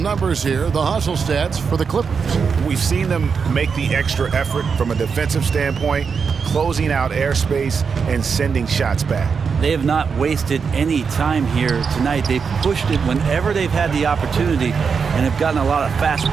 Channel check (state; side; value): quieter; left; 5.8 dB